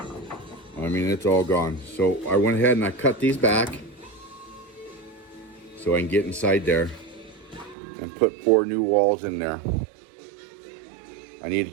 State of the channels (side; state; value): left; drops out; at 7.8 s